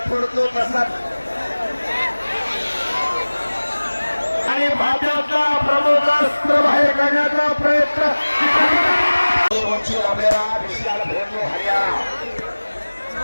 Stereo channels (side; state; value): both; inverted; correlation -1.00